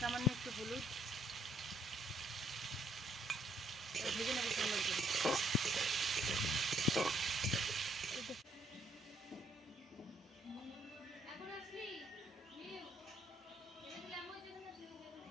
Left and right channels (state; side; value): normal; both; correlation 0.67